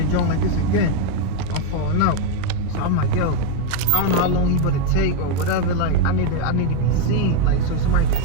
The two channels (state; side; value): different; both; correlation 0.02